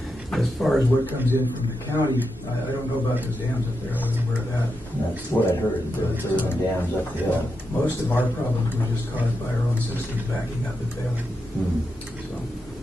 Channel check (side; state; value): both; normal; correlation 0.86